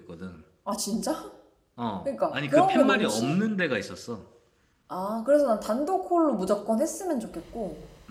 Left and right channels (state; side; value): identical; both; correlation 1.00